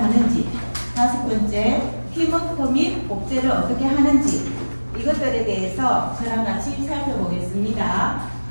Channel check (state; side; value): inverted; both; correlation -1.00